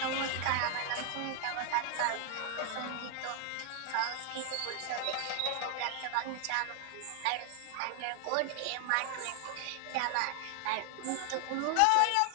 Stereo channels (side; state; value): both; different; correlation 0.00